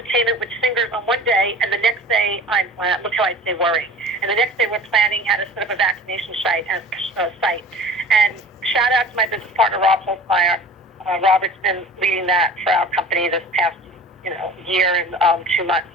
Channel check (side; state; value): both; normal; correlation 0.40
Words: with singers on one day, and the next day, look how I say worrying. And the next day we're planning how to set up a vaccination site. And shout out to my business partner, Rob Holzmeyer. Robert's been leading that for our company this past year and 2 months.